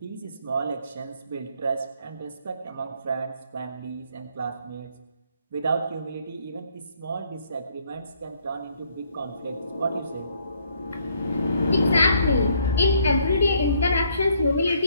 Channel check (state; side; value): inverted; both; correlation -0.68